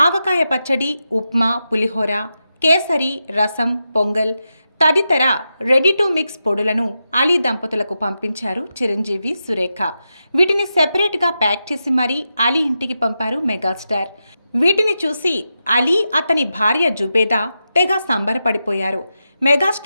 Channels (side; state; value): both; inverted; correlation -0.88